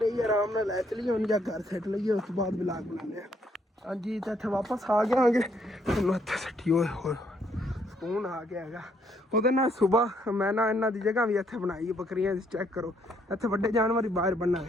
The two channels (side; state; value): both; normal; correlation 0.70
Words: ਹੀ ਆਰਾਮ ਨਾਲ ਲੈ ਚਲੀਏ ਹੁਣ, ਜਾਂ ਘਰ ਸੈੱਟ ਲਈਏ, ਉਸ ਤੋਂ ਬਾਅਦ ਵਲੌਗ ਬਣਾਉਂਦੇ ਹਾਂ। ਹਾਂਜੀ ਤਾਂ ਇੱਥੇ ਵਾਪਸ ਆ ਗਏ ਆਂਗੇ, ਤੁਹਾਨੂੰ ਇੱਥੇ ਸੱਟੀ ਹੋਏ ਸਕੂਨ ਆ ਗਿਆ ਹੈਗਾ। ਉਹਦੇ ਨਾਲ ਸੁਬਾਹ ਮੈਂ ਨਾ ਇਹਨਾਂ ਦੀ ਜਗ੍ਹਾ ਵੀ ਇੱਥੇ ਬਣਾਈ, ਬੱਕਰੀਆਂ ਦੀ, ਚੈੱਕ ਕਰੋ ਇੱਥੇ ਵੱਡੇ ਜਾਨਵਰ ਹੀ ਬਾਹਰ